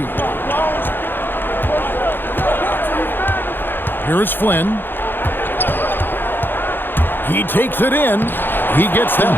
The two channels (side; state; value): right; late; 0.098 ms